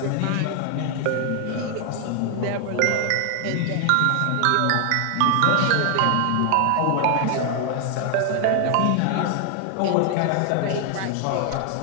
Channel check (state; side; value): different; both; correlation 0.00